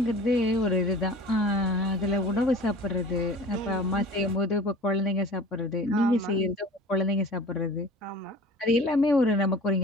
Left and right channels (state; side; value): normal; both; correlation 0.43